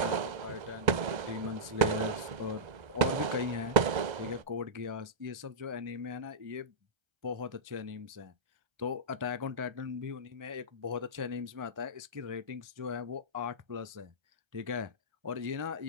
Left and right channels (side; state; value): left; late; 1.3 ms